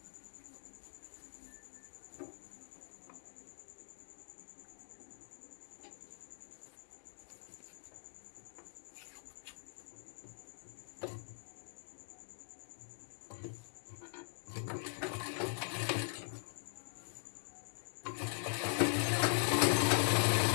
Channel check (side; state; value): right; silent; digital silence